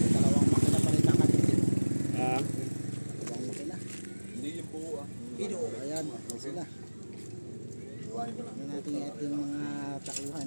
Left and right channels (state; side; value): inverted; both; correlation -1.00